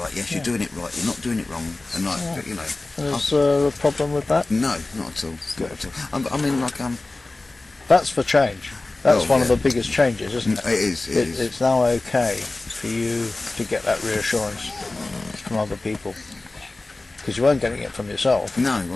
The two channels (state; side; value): quieter; right; 3.1 dB